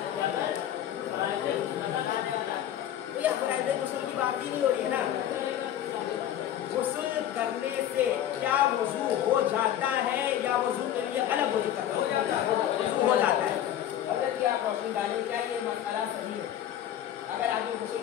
गुस्ल की बात ही नहीं हो रही है ना। गुस्ल करने से क्या वजू हो जाता है, या वजू के लिए अलग वजू करना वजू हो जाता है? अगर कि आप रोशनी डालें, क्या ये मसला सही है? अगर आपको गुस्ल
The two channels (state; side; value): quieter; right; 11.1 dB